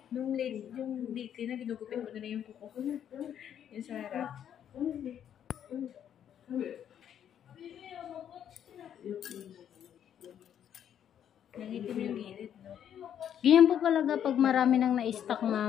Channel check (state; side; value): quieter; right; 9.5 dB